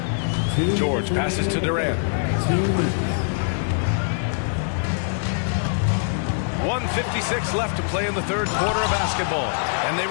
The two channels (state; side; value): silent; right; digital silence